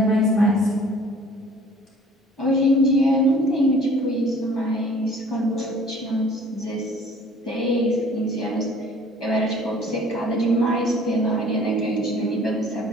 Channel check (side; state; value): both; normal; correlation 0.51